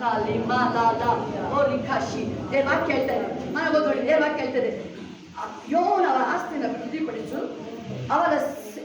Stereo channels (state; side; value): identical; both; correlation 1.00